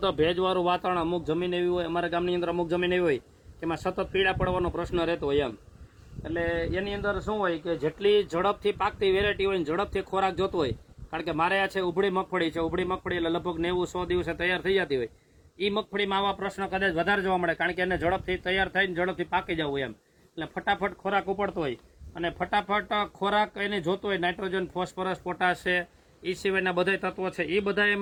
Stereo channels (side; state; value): both; identical; correlation 1.00